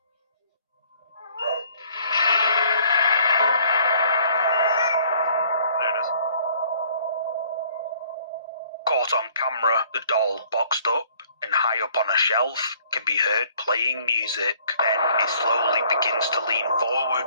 There it is. Caught on camera, the doll, boxed up and high up on a shelf, can be heard playing music. Then it slowly begins to lean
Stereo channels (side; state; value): both; inverted; correlation -0.59